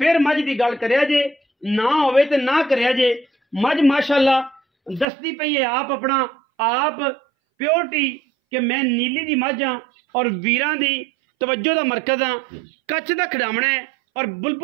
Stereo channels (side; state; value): left; drops out; at 5.1 s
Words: मझ की गल करिया जे, ना होवे तो ना करिया जे। मझ माशाअल्लाह दसदी पई है आप अपना आप प्योरिटी कि मैं नीली दी मझ हाँ और वीरां दी तवज्जो दा मरकज हाँ। कच्छ दा खिडावना है और